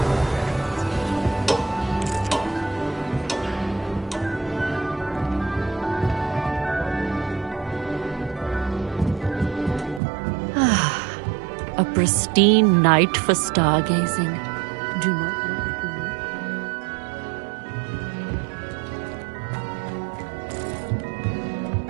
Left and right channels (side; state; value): left; drops out; at 10.0 s